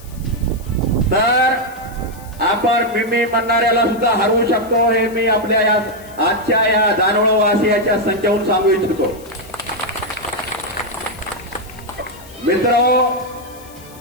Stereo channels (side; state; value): left; noise; hiss, 22 dB below the sound